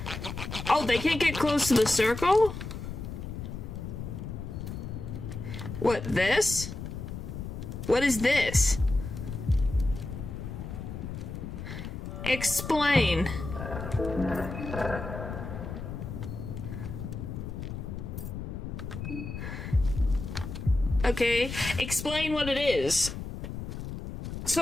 Oh, they can't get close to the circle? What, this? What is this? Explain. Okay, explain what it is.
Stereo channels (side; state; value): left; noise; rumble, 7 dB below the sound